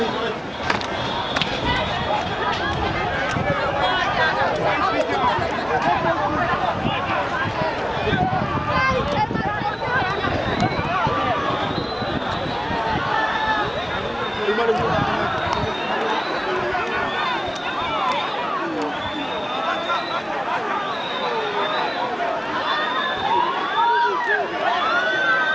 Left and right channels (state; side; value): identical; both; correlation 1.00